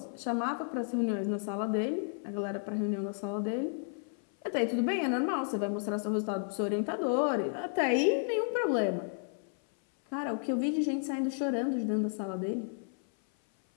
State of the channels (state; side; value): silent; right; 56 dB below the other